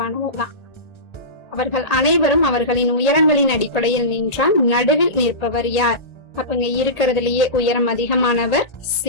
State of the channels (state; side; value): late; right; 1.8 ms